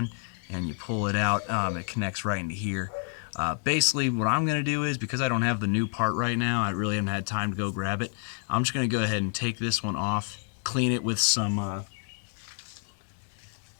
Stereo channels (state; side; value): silent; right; 59 dB below the other